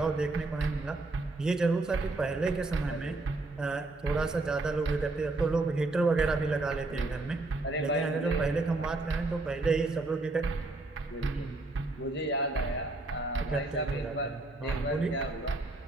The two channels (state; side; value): quieter; left; 3.0 dB